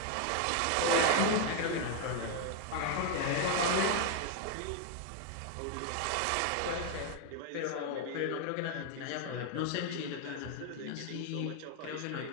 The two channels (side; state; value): both; different; correlation 0.00